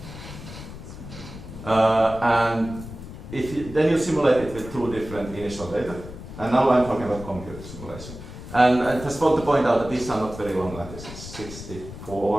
And then you simulate it with two different initial data. And now I'm talking about computer simulation. And I just want to point out that these are not very long lattices,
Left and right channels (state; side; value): noise; left; rumble, 13 dB below the sound